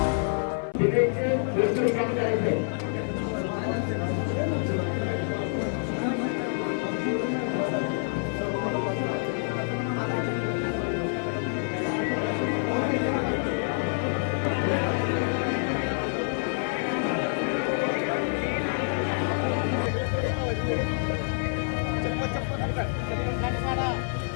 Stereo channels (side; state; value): right; silent; 58 dB below the other